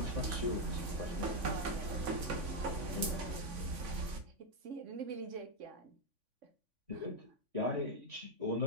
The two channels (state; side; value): late; left; 3.5 ms